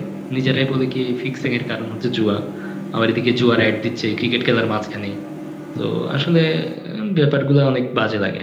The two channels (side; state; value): both; identical; correlation 1.00